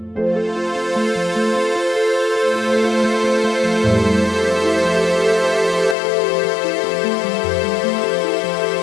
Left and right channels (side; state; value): right; drops out; at 6.0 s